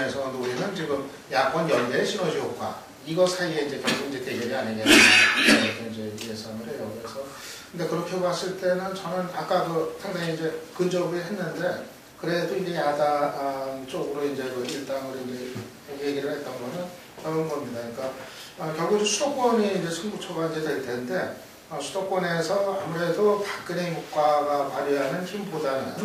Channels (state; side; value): identical; both; correlation 1.00